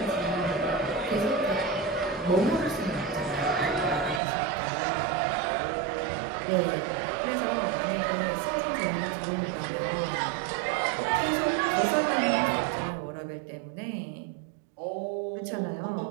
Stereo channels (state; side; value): drops out; left; at 4.2 s